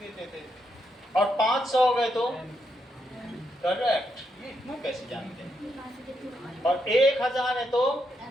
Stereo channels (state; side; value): normal; both; correlation 0.80